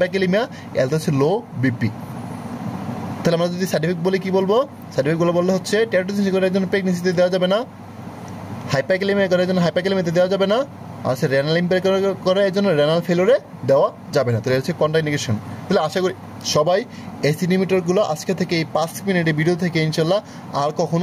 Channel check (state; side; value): identical; both; correlation 1.00